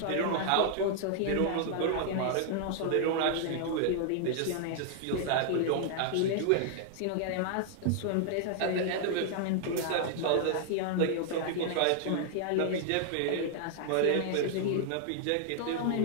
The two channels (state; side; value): different; both; correlation -0.01